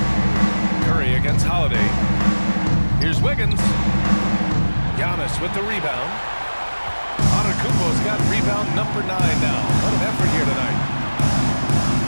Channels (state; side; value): inverted; both; correlation -1.00